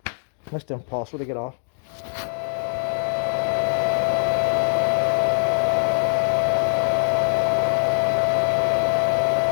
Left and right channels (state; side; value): silent; right; digital silence